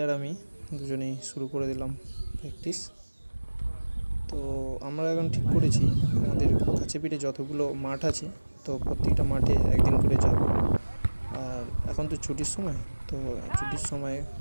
आमी दुजोनेई शुरू करे दिलाम प्रैक्टिस। तो आमरा एखन ठीक करेछि आमादेर काछे पिठे যতগুলো माठ आछे तो प्रत्येकटा माठे एकदिन करे जाबो। और एखन तो छुटिर समय तो छुटिर समय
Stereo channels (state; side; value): inverted; both; correlation -1.00